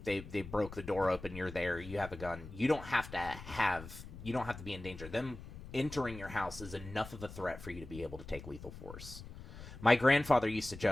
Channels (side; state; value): left; noise; rumble, 13 dB below the sound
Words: they broke the door open, you're there, you have a gun, you don't have to be in danger. Them entering your house is enough of a threat for you to be able to take lethal force. My grandfather used to